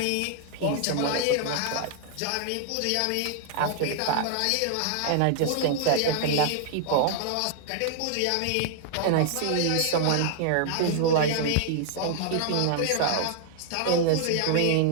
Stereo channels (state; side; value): different; both; correlation 0.00